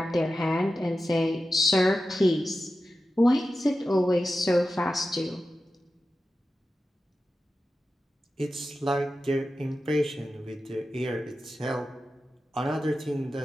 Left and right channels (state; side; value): normal; both; correlation 0.92